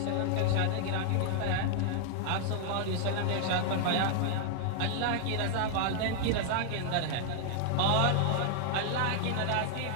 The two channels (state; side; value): different; both; correlation 0.00